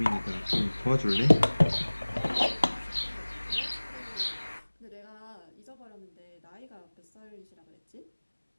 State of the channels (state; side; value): inverted; both; correlation -1.00